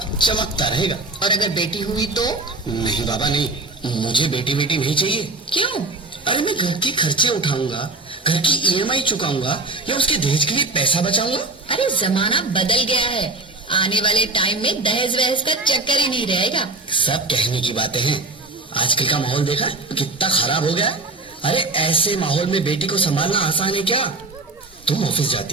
चमकता रहेगा। और अगर बेटी हुई तो? नहीं बाबा नहीं, मुझे बेटी बेटी नहीं चाहिए। क्यों? अरे मैं घर के खर्चे उठाऊंगा, घर की ईएमआई चुकाऊंगा या उसके दहेज के लिए पैसा बचाऊंगा। अरे जमाना बदल गया है, आने वाले टाइम में दहेज वहेज का चक्कर ही नहीं रहेगा। सब कहने की बातें हैं, आजकल का माहौल देखा कितना खराब हो गया। अरे ऐसे माहौल में बेटी को संभालना आसान है क्या? तुम ऑफिस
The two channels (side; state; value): left; quieter; 3.2 dB